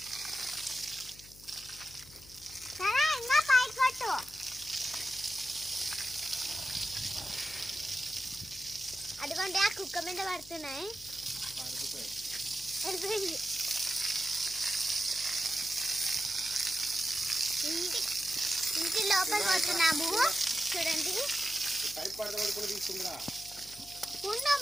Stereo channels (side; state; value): left; noise; hum, 21 dB below the sound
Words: సరే ఇంకా పైకి కొట్టు. అదిగోండి ఆ కుక్క మీద పడుతున్నాయి. ఇంటి లోపల పోతున్నాము. చూడండి